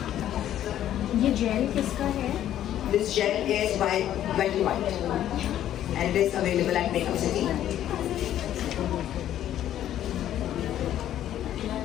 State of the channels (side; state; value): right; quieter; 11.7 dB